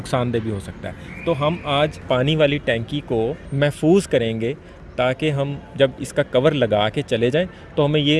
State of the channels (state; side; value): identical; both; correlation 1.00